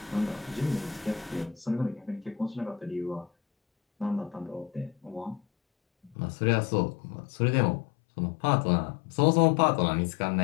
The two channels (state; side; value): drops out; right; at 6.2 s